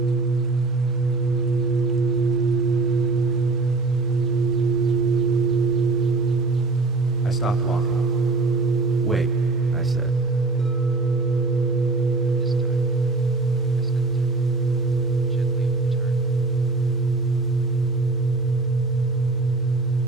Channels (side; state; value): left; quieter; 3.6 dB